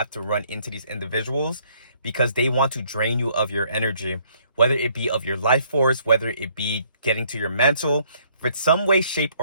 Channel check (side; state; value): both; inverted; correlation -0.64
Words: to run into these individuals because they want to drain you of your energy, whether it be of your life force, whether it be getting to your mental. For some way, shape,